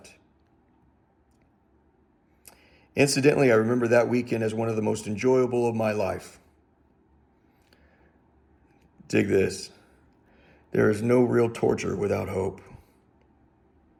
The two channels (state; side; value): identical; both; correlation 1.00